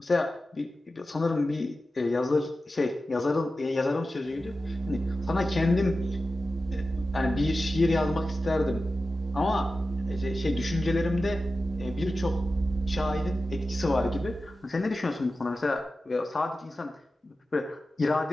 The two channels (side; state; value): both; normal; correlation 0.93